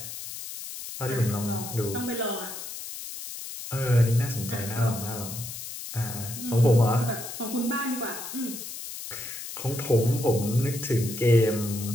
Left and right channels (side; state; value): left; noise; hiss, 9 dB below the sound